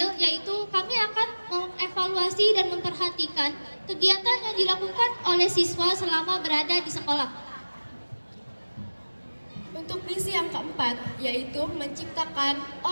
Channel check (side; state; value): both; inverted; correlation -1.00